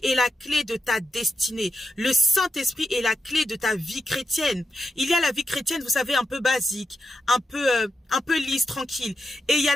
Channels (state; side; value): normal; both; correlation 0.86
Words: est la clé de ta destinée. Le Saint-Esprit est la clé de ta vie chrétienne. Il y a la vie chrétienne, vous savez, un peu basique, un peu lisse, tranquille. Et il y a